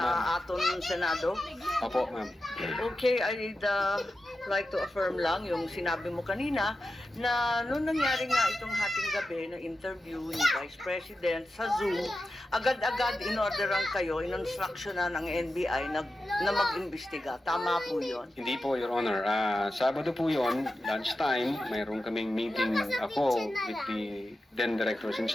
ma'am. aton Senado. Opo, ma'am. Okay, I'd like to affirm lang yung sinabi mo kanina na noong nangyari nga itong hating gabi na interview ni Vice President sa Zoom, agad-agad inorderan kayo, in-instructionan ng NBI na mag-imbestiga. Tama po yun? Hindi po, Your Honor. Sabado po yun, lunchtime, mayroon kaming meeting ako with the then Director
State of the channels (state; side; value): normal; both; correlation 0.91